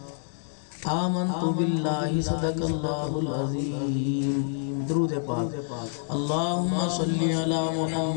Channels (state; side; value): silent; right; digital silence